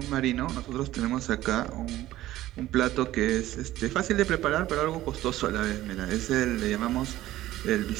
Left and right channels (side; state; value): left; quieter; 15.1 dB